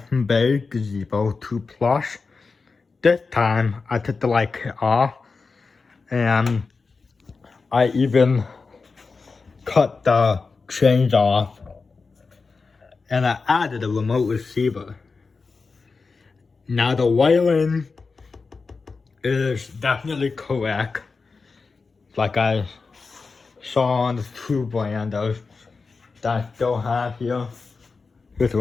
gazebo 2 Plus. This time I took the light kit off and I even cut the chains off and I added a remote receiver. Now the wiring is definitely correct, like I saw on the two brandos that I still have here. Here's the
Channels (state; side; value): quieter; right; 4.4 dB